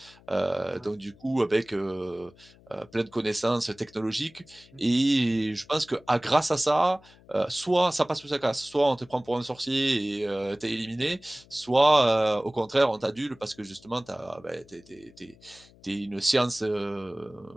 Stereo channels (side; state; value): left; noise; hum, 26 dB below the sound